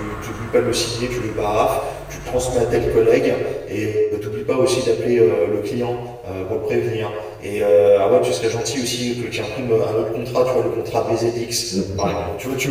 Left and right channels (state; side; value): identical; both; correlation 1.00